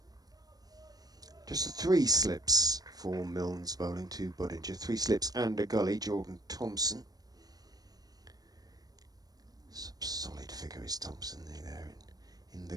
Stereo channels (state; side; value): late; left; 0.19 ms